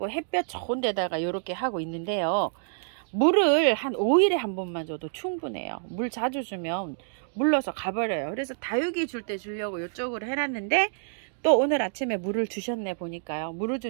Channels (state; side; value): silent; left; digital silence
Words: 햇볕 좋은 데다가 이렇게 하고 있는데요, 물을 한 5일에 한 번만 줘도 충분해요. 물 자주 주면 물러서 가버려요. 그래서 다육이 줄 때 주려고 이쪽으로 해놨는데 또 오늘 아침에 물을 주셨네. 보니까요. 물을